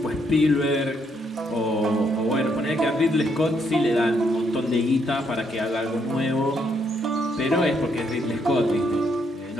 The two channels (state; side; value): normal; both; correlation 0.74